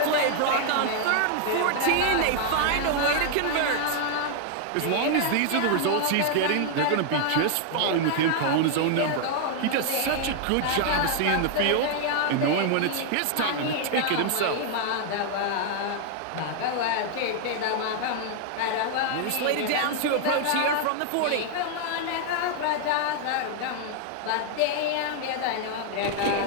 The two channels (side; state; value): both; different; correlation 0.00